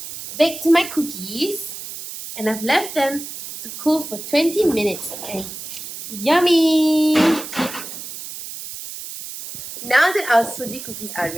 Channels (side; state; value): right; noise; hiss, 10 dB below the sound